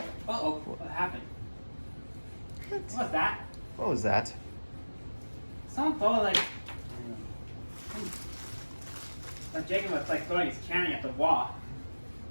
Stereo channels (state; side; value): inverted; both; correlation -1.00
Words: Uh-oh, what happened? What was that? What was that? Someone thought like Jacob was like throwing his candy at the wall.